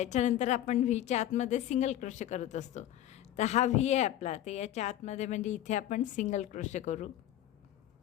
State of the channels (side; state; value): right; quieter; 12.5 dB